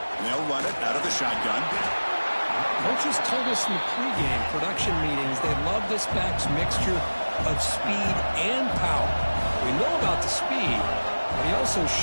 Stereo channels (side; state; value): both; inverted; correlation -1.00